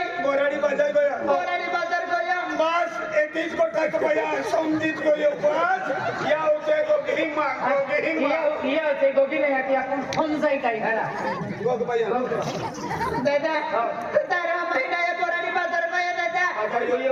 बोराडी बाजार गया बोराडी बाजार गयो बस एतीच गोटा को भैया समझीत गयो बस या होते को गेहिंग मांग या ते गोगी नाही आती आपण फोन जाई काय घरा गोग भैया दादा तारो आम्ही डायो बोराडी बाजार गयो दादा बाजार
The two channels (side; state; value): both; identical; correlation 1.00